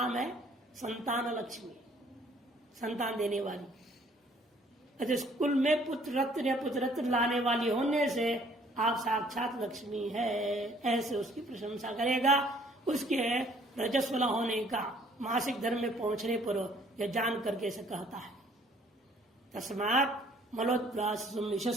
है संतान लक्ष्मी, संतान देने वाली। अच्छा, कुल में पुत्र रत्न या पुत्र रत्न लाने वाली होने से आप साक्षात लक्ष्मी है, ऐसे उसकी प्रशंसा करेगा। उसके रजस्वला होने का मासिक धर्म में पहुंचने पर यह जान करके ऐसे कहता है। तस्मात् मलोद्वासं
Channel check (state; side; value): normal; both; correlation 0.60